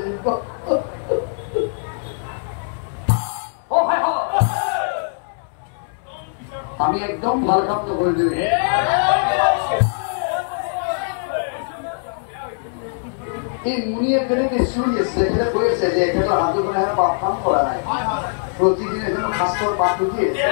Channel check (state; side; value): silent; right; 65 dB below the other